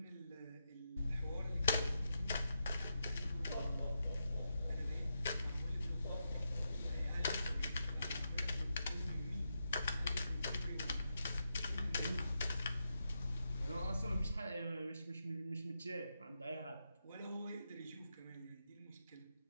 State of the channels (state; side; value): inverted; both; correlation -0.85